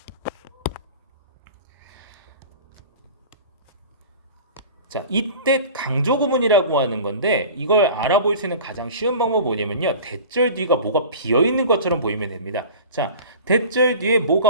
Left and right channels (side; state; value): both; inverted; correlation -0.38